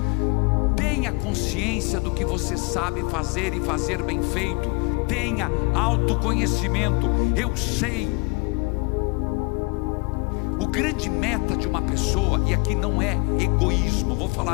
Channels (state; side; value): quieter; right; 29.5 dB